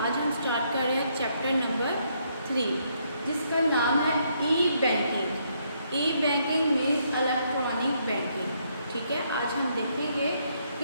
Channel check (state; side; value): inverted; both; correlation -0.73